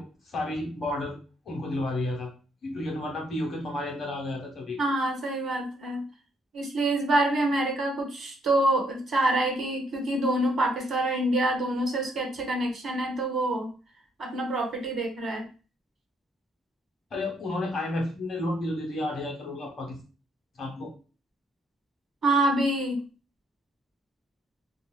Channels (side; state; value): both; normal; correlation 0.70